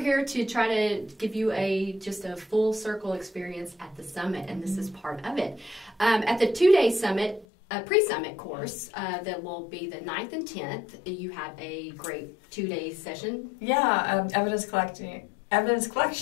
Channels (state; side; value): drops out; right; at 7.5 s